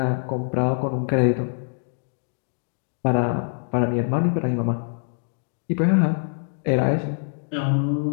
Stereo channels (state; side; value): silent; right; 62 dB below the other